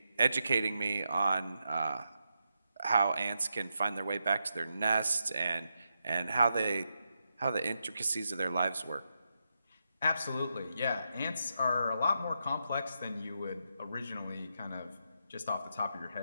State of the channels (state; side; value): inverted; both; correlation -0.85